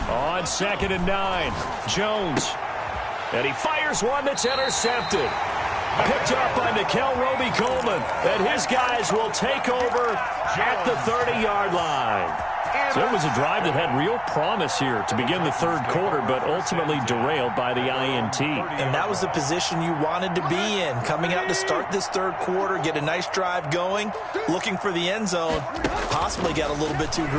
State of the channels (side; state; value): both; identical; correlation 1.00